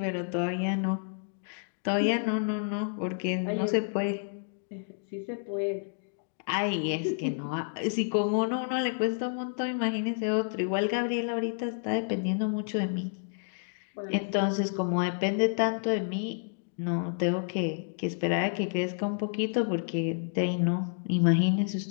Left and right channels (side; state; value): right; silent; digital silence